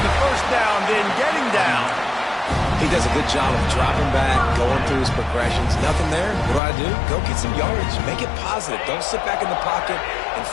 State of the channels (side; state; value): right; drops out; at 6.6 s